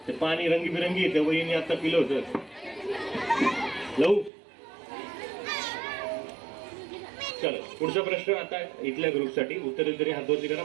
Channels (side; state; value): left; drops out; at 4.3 s